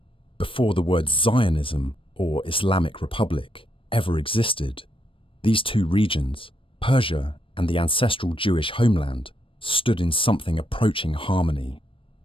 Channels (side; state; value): right; late; 0.25 ms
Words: before the words Zionism or Islamic Republic ever existed, these two regions, Persia and the ancestral Jewish homeland, stood in something approaching harmony.